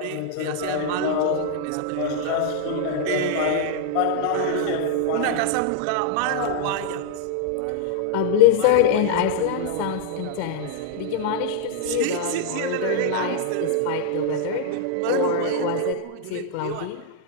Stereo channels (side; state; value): both; different; correlation -0.01